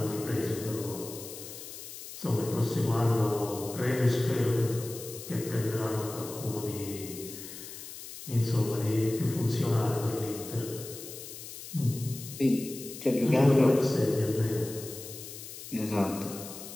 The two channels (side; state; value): left; noise; hiss, 12 dB below the sound